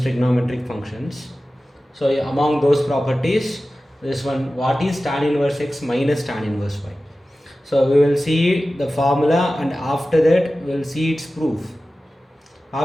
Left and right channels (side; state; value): both; normal; correlation 0.95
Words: functions. So among those properties, this one, what is tan inverse x minus tan inverse y? So we will see the formula and after that we will see its proof.